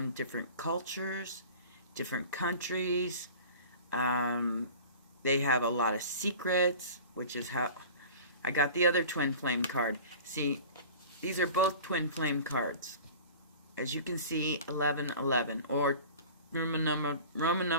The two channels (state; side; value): inverted; both; correlation -0.41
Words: different cultures, different countries. They have a lot of secrets, which is how I got the other twin flame card. See, these are both twin flame cards. As you can see, 1111, or Roman